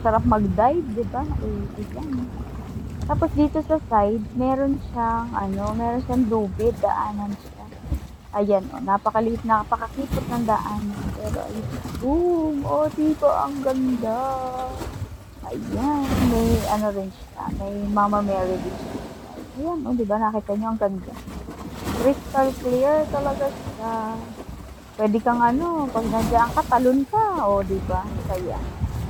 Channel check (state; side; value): identical; both; correlation 1.00